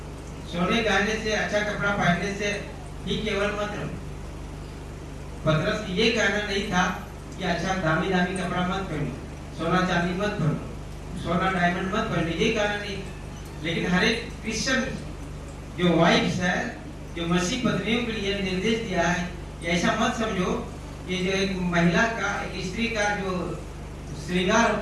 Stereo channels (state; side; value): identical; both; correlation 1.00